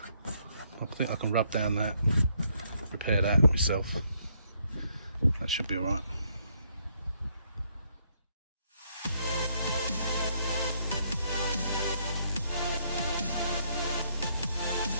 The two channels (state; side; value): inverted; both; correlation -0.72